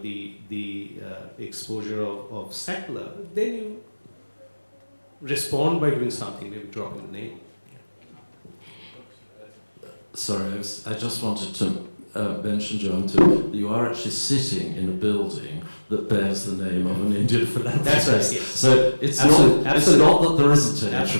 exposure of Sackler, then you respond by doing something, maybe dropping the name. Sorry, I just wanted to mention, Jayanta, you are actually sitting in a building that bears the name of an Indian philanthropist. That's right, yes. So it's not that there isn't any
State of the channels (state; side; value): inverted; both; correlation -1.00